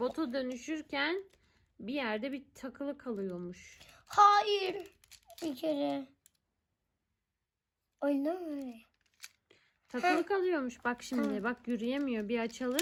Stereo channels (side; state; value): both; identical; correlation 1.00